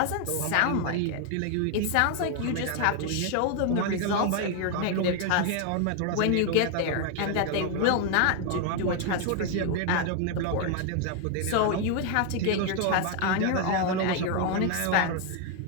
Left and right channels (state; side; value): different; both; correlation 0.00